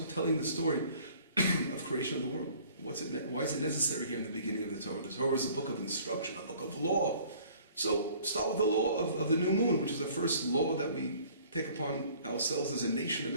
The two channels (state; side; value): inverted; both; correlation -0.53